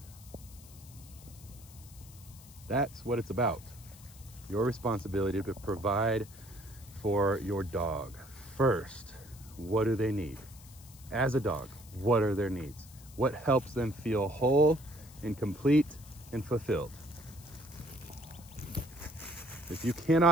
That's what it's about. Your responsibility to provide for your dog. First, what do they need? As a dog, what are their needs? What helps them feel whole and complete and fulfilled? If you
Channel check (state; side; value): noise; left; hiss, 21 dB below the sound